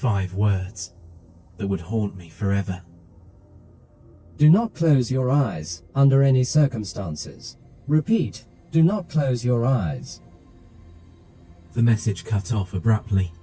words that would haunt me forever. Do not close your eyes under any circumstances. Repeat, do not close your eyes. The message cut off abruptly.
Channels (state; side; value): identical; both; correlation 1.00